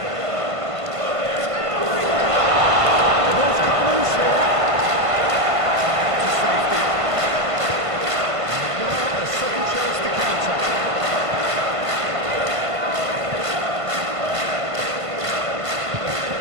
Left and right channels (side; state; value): left; late; 1.5 ms